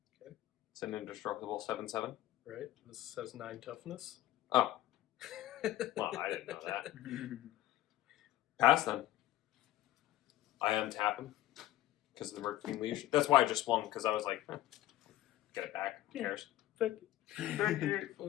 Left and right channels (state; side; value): quieter; right; 14.7 dB